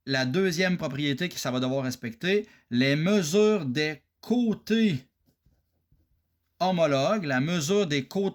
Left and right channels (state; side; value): identical; both; correlation 1.00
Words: la deuxième propriété que ça va devoir respecter, les mesures des côtés homologues, la mesure des